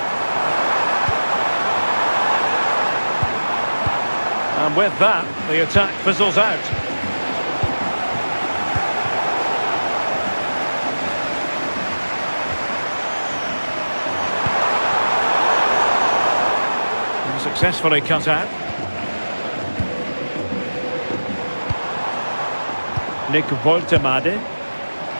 And with that, the attack fizzles out. Successfully cut out. Nick Woltemade.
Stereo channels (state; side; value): inverted; both; correlation -1.00